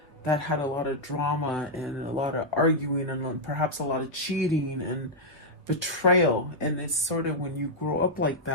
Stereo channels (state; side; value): normal; both; correlation -0.05